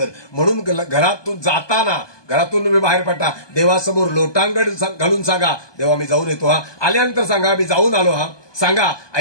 म्हणून घरातून जाताना, घरातून तुम्ही बाहेर पडता, देवासमोर लोटांगण घालून सांगा, देवा मी जाऊन येतो हा. आल्यानंतर सांगा मी जाऊन आलो हा. सांगा,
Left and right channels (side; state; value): right; late; 1.2 ms